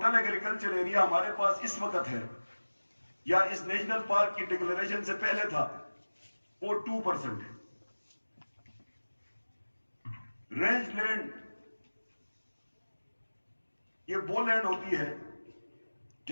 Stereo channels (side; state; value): both; inverted; correlation -1.00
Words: एग्रीकल्चर एरिया हमारे पास इस वक्त है या इस नेशनल पार्क की डिक्लेरेशन से पहले था वो 2% है। रेंज लैंड ये वो लैंड होती है